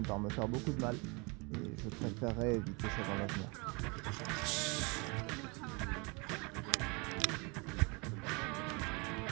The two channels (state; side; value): quieter; left; 29.9 dB